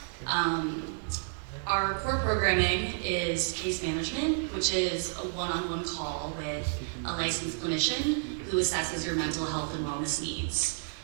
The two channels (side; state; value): left; silent; digital silence